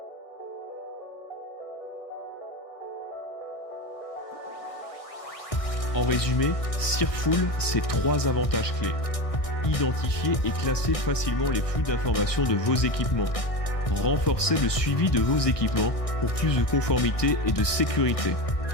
En résumé, Searful, c'est 3 avantages clés. Identifier et classer facilement les flux d'informations de vos équipements. Renforcer le suivi de vos équipements pour plus de conformité et de sécurité.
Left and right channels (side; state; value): right; late; 1.6 ms